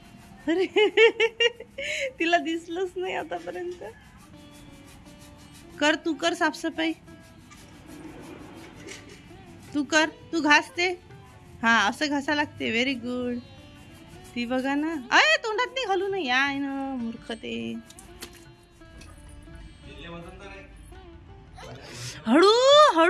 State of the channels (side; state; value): both; identical; correlation 1.00